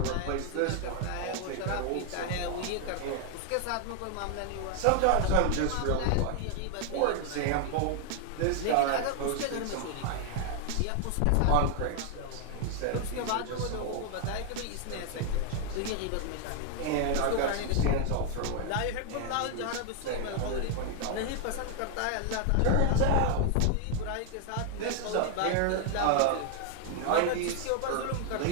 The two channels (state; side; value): different; both; correlation 0.00